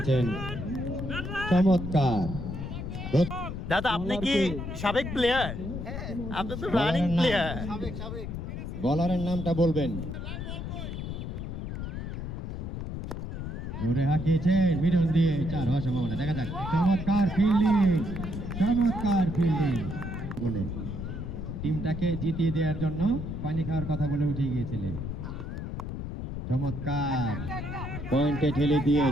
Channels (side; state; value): left; noise; rumble, 6 dB below the sound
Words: চমৎকার। দাদা, আপনি কি সাবেক প্লেয়ার? আপনি তো রানিং প্লেয়ার। বলারের নামটা বলবেন। জোরে হাঁকিয়েছেন মিডল দিয়ে, 4 হওয়ার সম্ভাবনা। দেখা যাক, চমৎকার ফিল্ডিং, চমৎকার ফিল্ডিং বলে টিমটাকে জিতিয়ে দেওয়ার জন্য পানি খাওয়ার কথা বলে উঠে গিয়েছিলেন। চমৎকার পয়েন্টে ঠেলে দিয়ে